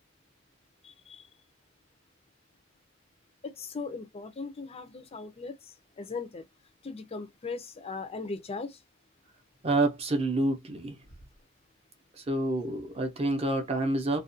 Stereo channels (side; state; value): both; normal; correlation 0.56